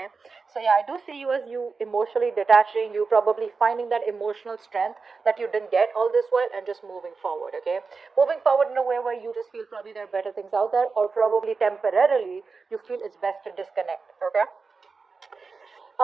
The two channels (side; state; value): left; quieter; 4.6 dB